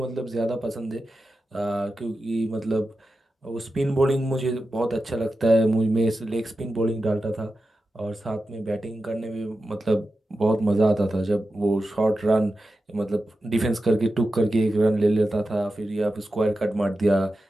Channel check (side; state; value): both; normal; correlation 0.92